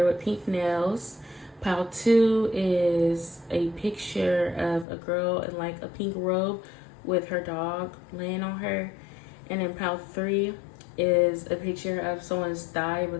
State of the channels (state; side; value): drops out; right; at 4.9 s